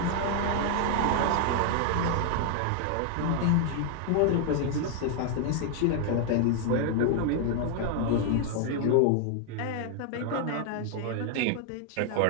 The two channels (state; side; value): different; both; correlation 0.00